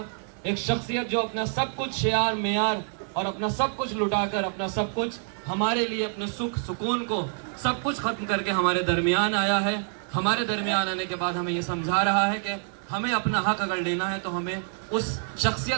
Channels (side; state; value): left; silent; 60 dB below the other